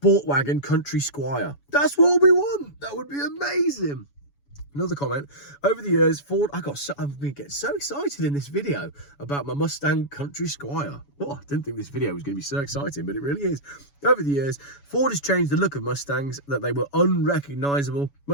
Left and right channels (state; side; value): late; right; 7.1 ms